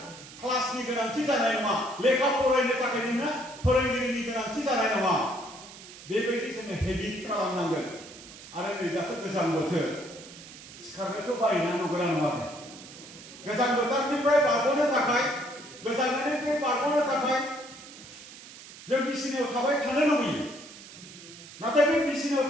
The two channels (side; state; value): right; noise; hiss, 17 dB below the sound